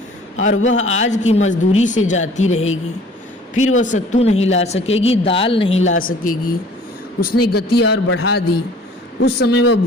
और वह आज की मजदूरी से जाती रहेगी। फिर वह सत्तू नहीं ला सकेगी, दाल नहीं ला सकेगी। उसने गति और बढ़ा दी। उस समय वह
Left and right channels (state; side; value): normal; both; correlation 0.51